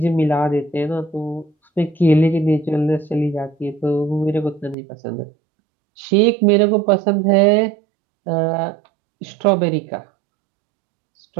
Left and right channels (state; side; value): drops out; left; at 4.8 s